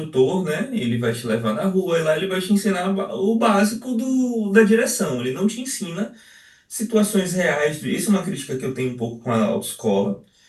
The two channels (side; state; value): both; identical; correlation 1.00